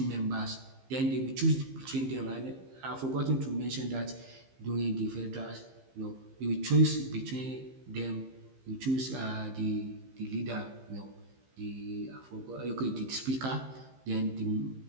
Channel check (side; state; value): left; late; 15 ms